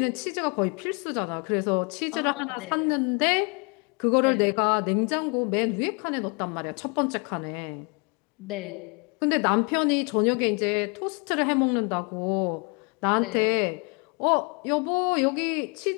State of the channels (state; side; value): quieter; right; 33.7 dB